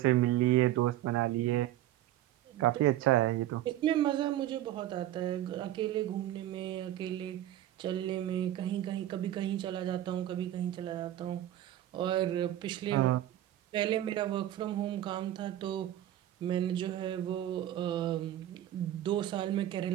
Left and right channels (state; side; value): quieter; left; 13.1 dB